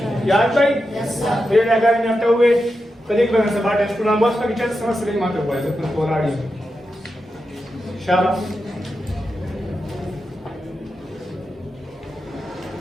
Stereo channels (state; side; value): normal; both; correlation 0.89